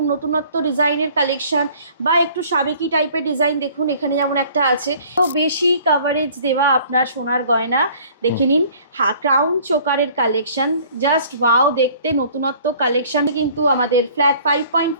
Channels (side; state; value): both; inverted; correlation -0.53